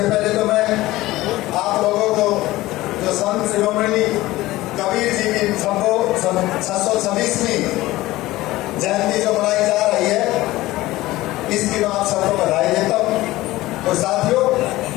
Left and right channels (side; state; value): right; quieter; 17.7 dB